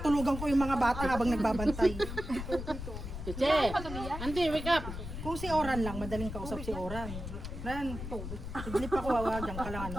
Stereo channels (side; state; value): left; noise; rumble, 7 dB below the sound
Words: ko yung mga bata habang nagbabantay. Che, Auntie, wake up. Kung si Oran lang, madaling kausap si Oran. Ran, siglip ako, diyan ka lang,